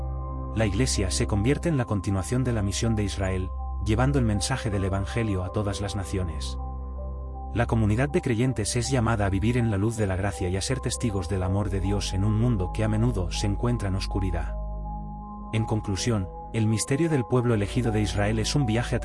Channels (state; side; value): identical; both; correlation 1.00